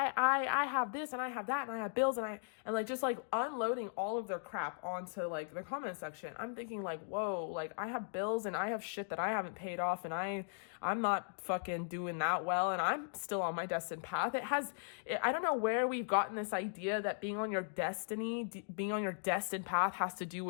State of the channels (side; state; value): right; silent; digital silence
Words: have this and I have that and I have bills and like just like unloading all of their crap onto like the comment section. I'm thinking like, whoa, like I have bills and I have shit that I haven't paid off and I'm not fucking doing that well and I'm still on my destined path. I don't know where we've gotten this idea that being on your destiny, being on your destined path has to do